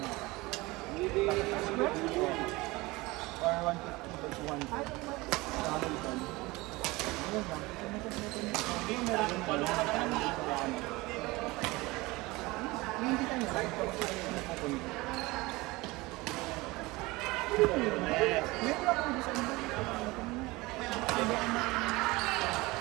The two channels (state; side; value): quieter; left; 21.9 dB